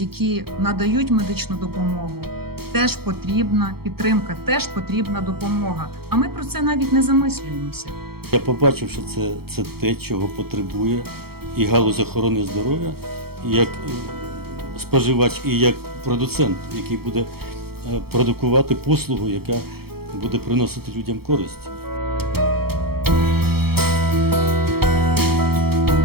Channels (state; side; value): late; left; 0.95 ms